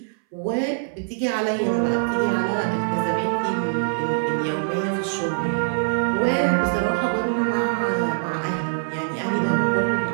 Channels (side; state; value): left; silent; 61 dB below the other